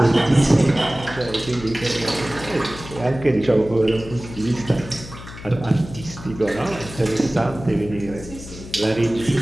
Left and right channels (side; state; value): left; noise; hum, 14 dB below the sound